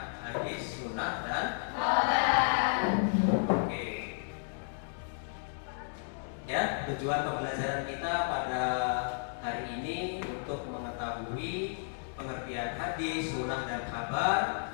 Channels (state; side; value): silent; right; digital silence